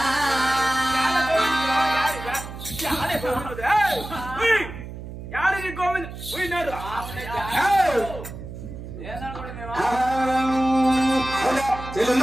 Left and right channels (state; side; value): noise; right; hum, 11 dB below the sound